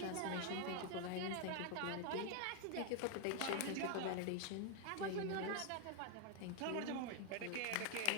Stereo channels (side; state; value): both; different; correlation 0.01